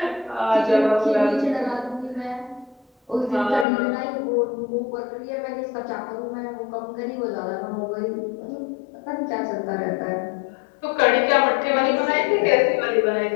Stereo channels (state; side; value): drops out; right; at 3.7 s